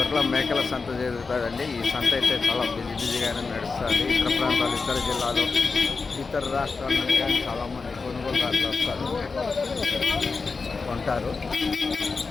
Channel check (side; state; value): right; quieter; 4.5 dB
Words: మేకల సంత జరుగుతుందండి. ఈ సంత అయితే చాలా బిజీగానే నడుస్తుంది. ఇతర ప్రాంతాలు, ఇతర జిల్లాలు, ఇతర రాష్ట్రాల నుండి కానీ చాలామంది కొనుగోలుదారులు వస్తారు, కొంటారు.